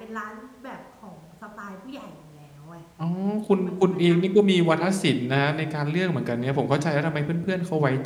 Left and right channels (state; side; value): identical; both; correlation 1.00